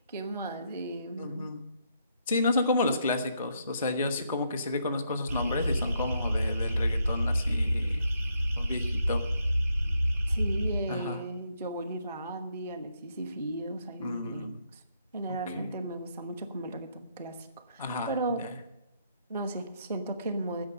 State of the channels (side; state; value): both; inverted; correlation -0.75